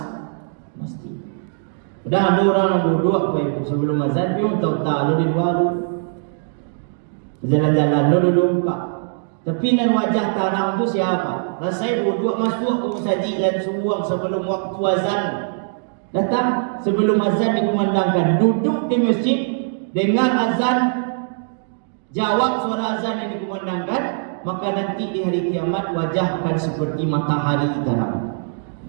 Dah ada orang yang duduk Bapak Ibu sebelum azan, dia tahu-tahu di luar. Jalan-jalan duduk Pak. Tapi nan wajah tarang tu siapa? Rasai duduk masuk ke masjid dan suang sebelum waktu azan datang, sebelum azan dikumandangkan, duduk di masjid dengar azan, jawab suara azan yang dikumandangkan, maka nanti di hari kiamat wajah akan seperti matahari terang.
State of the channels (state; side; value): silent; left; digital silence